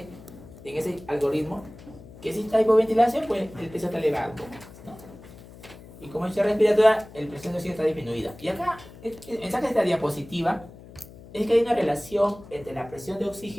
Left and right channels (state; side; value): noise; left; hum, 19 dB below the sound